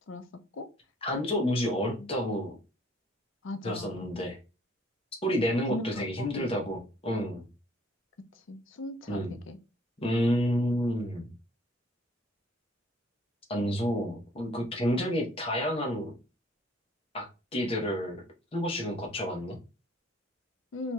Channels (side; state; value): both; normal; correlation 0.60